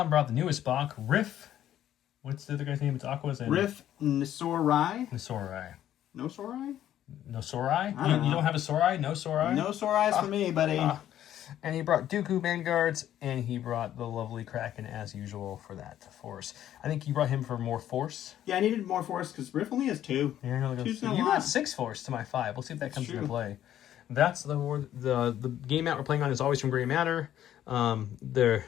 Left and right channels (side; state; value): right; quieter; 11.6 dB